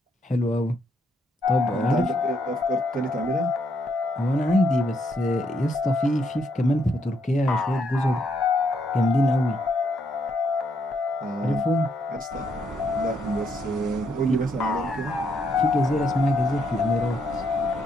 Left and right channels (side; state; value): both; normal; correlation 0.74